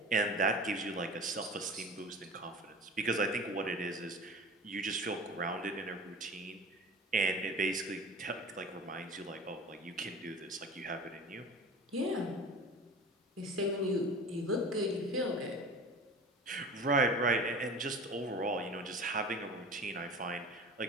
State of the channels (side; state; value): both; normal; correlation 0.37